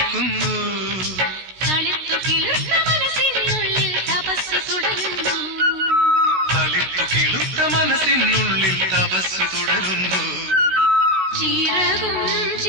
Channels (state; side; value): late; left; 16 ms